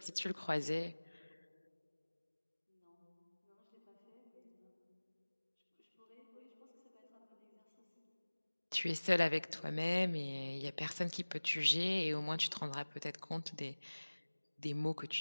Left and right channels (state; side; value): inverted; both; correlation -1.00